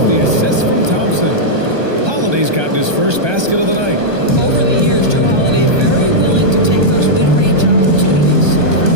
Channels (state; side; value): late; left; 1.2 ms